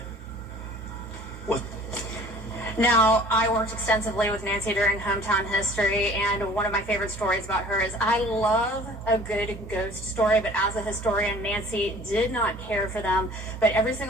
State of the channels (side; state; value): both; normal; correlation 0.49